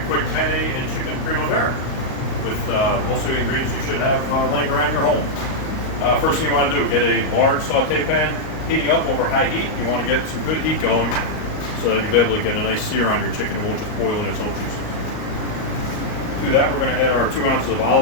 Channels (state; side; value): late; right; 38 ms